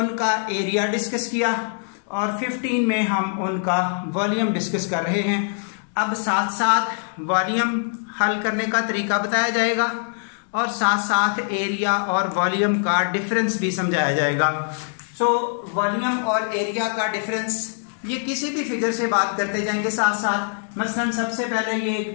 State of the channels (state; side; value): silent; right; digital silence